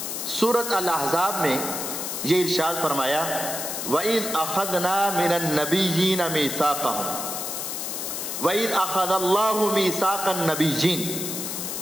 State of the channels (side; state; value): left; noise; hiss, 4 dB below the sound